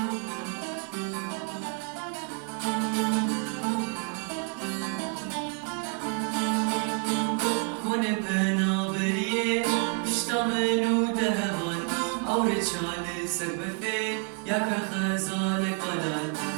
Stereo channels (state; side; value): quieter; left; 39.6 dB